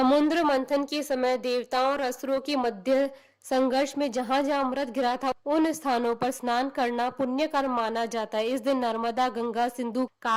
मंथन के समय देवताओं और असुरों के मध्य संघर्ष में जहां जहां अमृत गिरा था उन स्थानों पर स्नान करना पुण्य कर्म माना जाता है। इस दिन नर्मदा, गंगा, सिंधु,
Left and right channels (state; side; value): identical; both; correlation 1.00